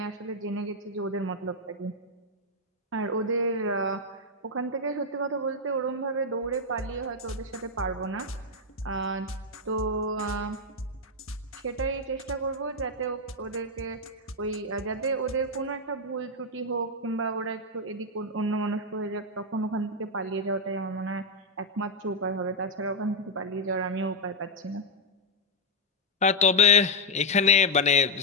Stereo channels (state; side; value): normal; both; correlation -0.01